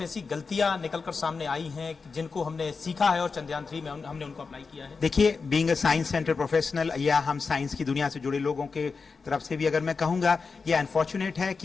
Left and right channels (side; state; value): right; quieter; 4.7 dB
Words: ऐसी गलतियां निकलकर सामने आई हैं जिनको हमने सीखा है और चंद्रयान 3 में हमने उनको अप्लाई किया है? देखिए, being a science centre professional या हम साइंस की दुनिया से जुड़े लोगों के तरफ से भी अगर मैं कहूँगा, ये अनफॉर्चुनेट है